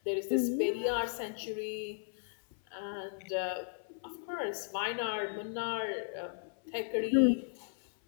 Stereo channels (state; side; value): silent; right; 54 dB below the other